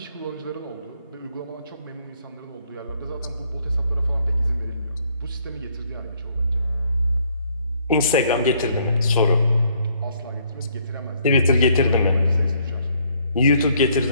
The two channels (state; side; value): inverted; both; correlation -0.66